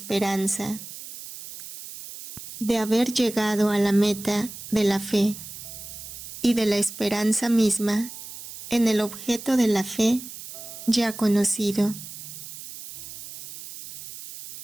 de haber llegado a la meta de la fe, y de la esperanza misma en el objeto de la fe ya conocido.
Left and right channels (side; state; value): right; noise; hiss, 13 dB below the sound